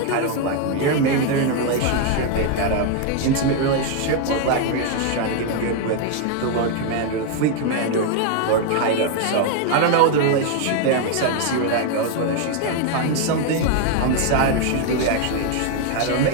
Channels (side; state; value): both; different; correlation 0.01